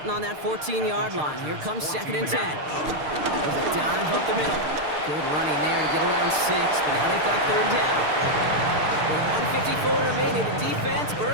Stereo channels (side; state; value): left; late; 6.6 ms